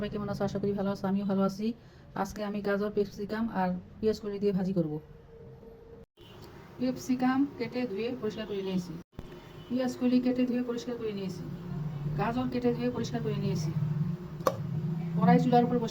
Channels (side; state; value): both; identical; correlation 1.00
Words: কেমন আছো? আশা করি ভালো আছো। আমিও ভালো আছি। আজকে আমি গাজর, ক্যাপসিকাম আর পেঁয়াজ কলি দিয়ে ভাজি করব। ক্যাপসিকাম কেটে ধুয়ে পরিষ্কার করে নিয়েছি, পেঁয়াজ কলি কেটে ধুয়ে পরিষ্কার করে নিয়েছি, গাজর কেটে ধুয়ে পরিষ্কার করে নিয়েছি। কড়াই চুলার উপর